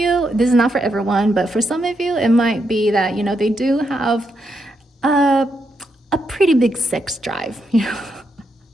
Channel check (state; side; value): normal; both; correlation 0.81